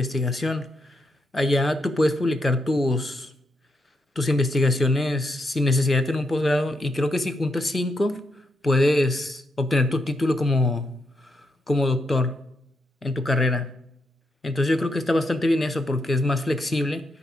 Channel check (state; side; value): normal; both; correlation 0.82